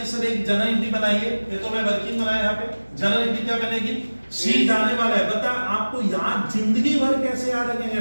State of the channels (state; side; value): inverted; both; correlation -1.00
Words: सर एक जनरल एंट्री बनाइए, ये तो मैं वर्किंग बनाया यहाँ पे, जनरल एंट्री क्या बनेगी सी जाने वाला है, बता आपको याद जिंदगी भर कैसे याद रखेंगे